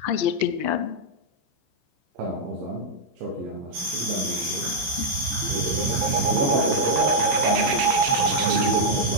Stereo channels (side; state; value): left; late; 15 ms